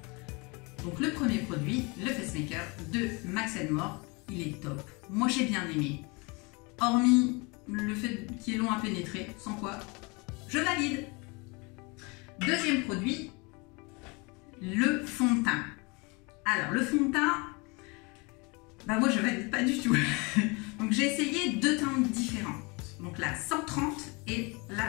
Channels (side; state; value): right; quieter; 28.6 dB